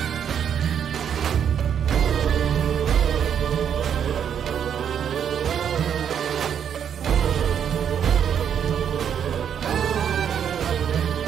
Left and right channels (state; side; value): quieter; left; 8.4 dB